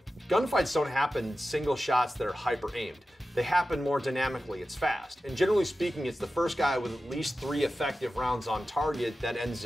gunfights don't happen single shots that are hyper aimed. They happen more dynamically, it's fast. And generally speaking, it's the first guy with at least 3 effective rounds on target that ends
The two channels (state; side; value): normal; both; correlation 0.93